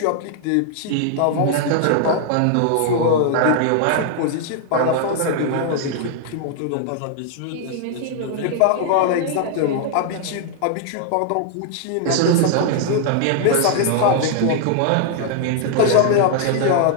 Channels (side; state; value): both; different; correlation 0.00